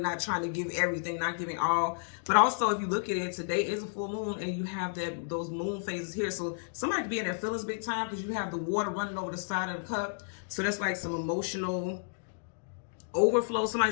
trying to give everything, not giving all. But also, if you look at it, today is a full moon and you have those moon phases here. So somebody could be in their feelings big time because you have the water running over the side of the cup. So that's like some emotional overflow.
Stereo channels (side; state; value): right; silent; digital silence